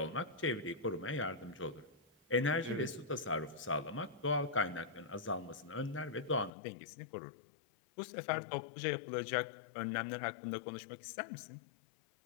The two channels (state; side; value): drops out; right; at 6.5 s